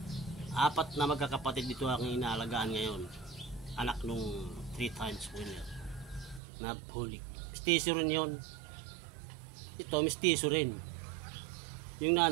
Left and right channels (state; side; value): drops out; left; at 6.4 s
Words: 4 na magkakapatid dito ang inaalagaan ngayon. Anak nung 3 times winner na bulik. Mestizo rin yun. Ito mestizo rin. Yung